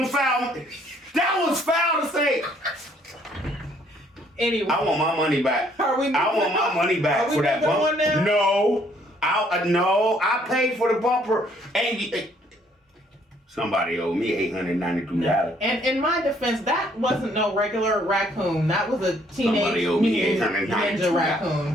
foul. That was foul to say. Anyway. I want my money back. I want my money back for that bumper. Now? No. I paid for the bumper. And somebody owed me $892. And in my defense, that wasn't no regular raccoon. That was a teenage ninja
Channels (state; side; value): normal; both; correlation 0.65